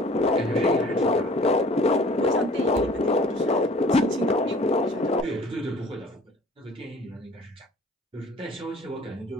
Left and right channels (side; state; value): both; normal; correlation 0.50